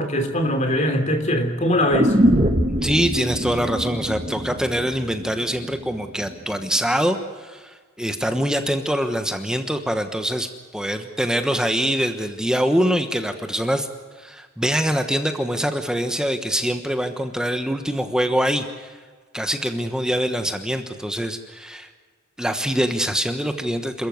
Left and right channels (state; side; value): normal; both; correlation 0.76